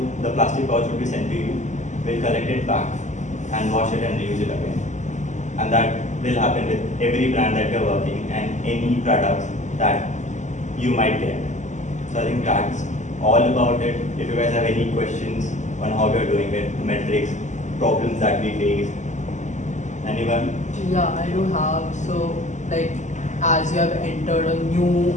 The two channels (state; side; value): late; right; 0.34 ms